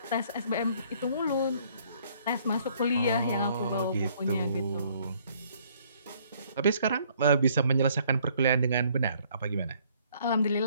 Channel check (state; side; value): inverted; both; correlation -0.63